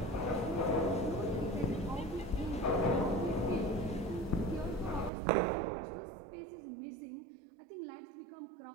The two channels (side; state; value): left; drops out; at 5.1 s